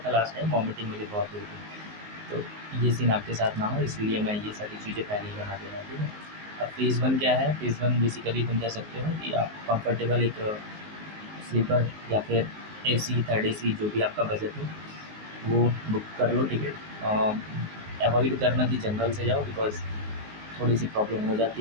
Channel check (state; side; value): late; left; 19 ms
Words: लास्ट टाइम, वॉमिटिंग मुझे बहुत हुई थी, तो ये सीन आपके साथ ना हो, इसलिए मैं ये सारी चीज़ें पहले ही बना दे रहा हूँ, ठीक है। अब फ़ेज़ 1 क्या है, फ़ेज़ 1 बेसिकली तुम कह सकते हो कि आप कंफर्टेबल एक स्लीपर या फिर AC, थर्ड AC, जो भी आपका बजट हो वो बुक कर लो टिकट। अवॉइड करना कि जनरल से जाओ, बिकॉज़ थोड़ी सी प्रॉब्लम हो